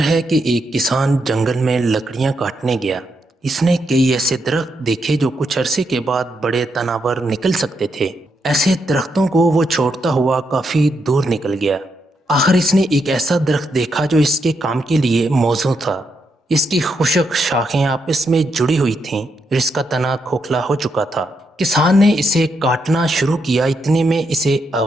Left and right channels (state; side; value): normal; both; correlation 0.80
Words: ہے کہ ایک کسان جنگل میں لکڑیاں کاٹنے گیا۔ اس نے کئی ایسے درخت دیکھے جو کچھ عرصے کے بعد بڑے تناور نکل سکتے تھے۔ ایسے درختوں کو وہ چھوڑتا ہوا کافی دور نکل گیا۔ آخر اس نے ایک ایسا درخت دیکھا جو اس کے کام کے لیے موزوں تھا۔ اس کی خشک شاخیں آپس میں جڑی ہوئی تھیں اور اس کا تنا کھوکھلا ہو چکا تھا۔ کسان نے اسے کاٹنا شروع کیا، اتنے میں اسے